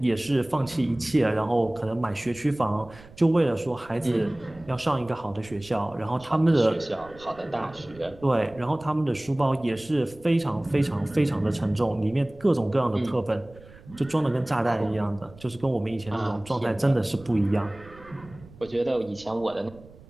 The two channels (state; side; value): noise; right; rumble, 22 dB below the sound